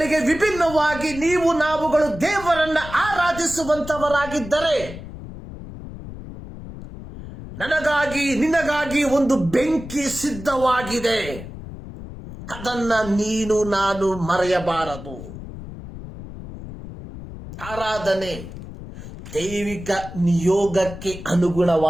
ವಿಭಿನ್ನವಾಗಿ ನಾವುಗಳು ದೇವರನ್ನ ಆರಾಧಿಸುವಂತವರಾಗಿದ್ದರೆ, ನನಗಾಗಿ ನಿನಗಾಗಿ ಒಂದು ಬೆಂಕಿ ಸಿದ್ಧವಾಗಿದೆ. ಅದನ್ನ ನಾನು ಮರೆಯಬಾರದು. ಆರಾಧನೆ ದೈವಿಕ ನಿಯೋಗಕ್ಕೆ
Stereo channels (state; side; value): noise; left; rumble, 12 dB below the sound